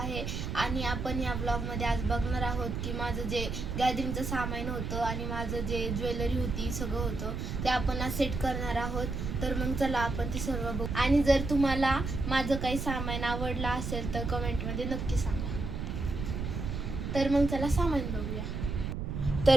आणि आपण या ब्लॉगमध्ये आज बघणार आहोत की माझं जे गॅदरिंगचं सामान होतं आणि माझं जे ज्वेलरी होती सगळं होतं ते आपण आज सेट करणार आहोत. तर मग चला आपण ते सर्व बघू. आणि जर तुम्हाला माझं काही सामान आवडलं असेल तर कमेंटमध्ये नक्की सांगा. तर मग चला सामान बघूया.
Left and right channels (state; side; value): noise; right; rumble, 4 dB below the sound